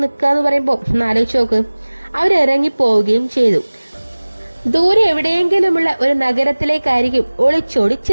നിൽക്കുക എന്ന് പറയുമ്പോൾ ആലോചിച്ച് നോക്ക്. അവരിറങ്ങിപ്പോവുകയും ചെയ്തു. ദൂരെ എവിടെയെങ്കിലുമുള്ള ഒരു നഗരത്തിലേക്കായിരിക്കും ഒളിച്ചോടി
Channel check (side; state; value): both; inverted; correlation -1.00